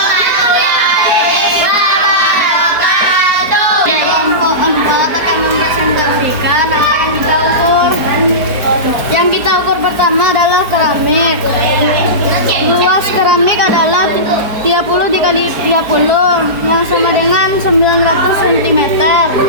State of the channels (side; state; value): left; late; 4.7 ms